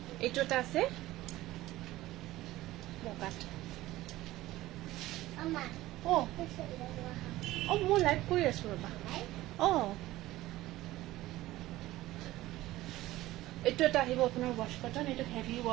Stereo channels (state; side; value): quieter; left; 16.7 dB